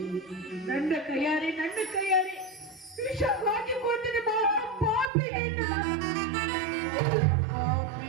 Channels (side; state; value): left; drops out; at 5.1 s